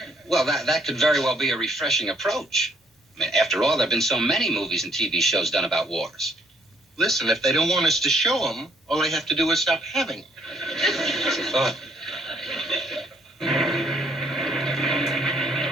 Well, that could very well be a refreshing approach. I mean, after all, there have been so many movies and TV shows done about wars. Listen, if they don't want us to show them, all I have to do is stop having them. That's a thought.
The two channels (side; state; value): both; normal; correlation 0.67